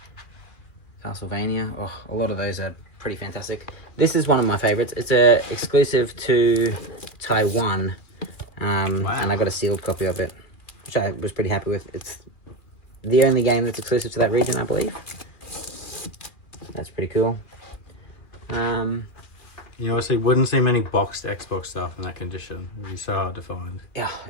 Castlevania. Oh, a lot of those are pretty fantastic. This is one of my favorites. It's a exclusive to Taiwan. And I got a sealed copy of it, which I was pretty happy with. It's the only game that's exclusive to that region, I believe. That's pretty cool. You obviously wouldn't see many boxed Xbox stuff in that condition. It'd be so hard to find. Yeah,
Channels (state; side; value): late; right; 2.4 ms